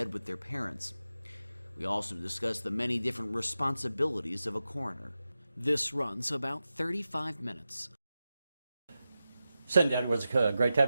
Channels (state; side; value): inverted; both; correlation -0.93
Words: with their parents. We also discuss the many different responsibilities of a coroner. This runs about 35 minutes. Cinda Edwards, great to